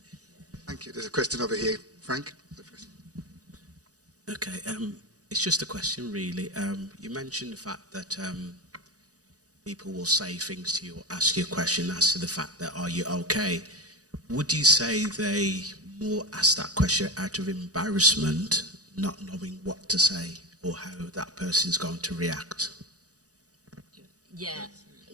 Thank you. There's a question over here. Frank? Okay, it's just a question, really. You mentioned the fact that people will say things to you or ask you a question as to the fact that, are you okay? Would you say they more ask that question out of embarrassment, not knowing what to say or how that person's going to react? Yeah.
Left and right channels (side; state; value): left; late; 0.67 ms